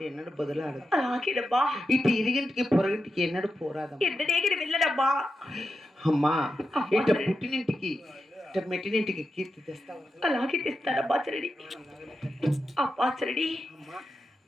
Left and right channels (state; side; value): normal; both; correlation 0.88